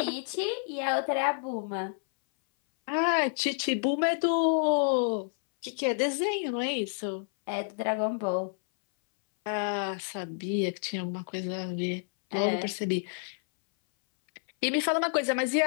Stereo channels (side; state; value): right; silent; 58 dB below the other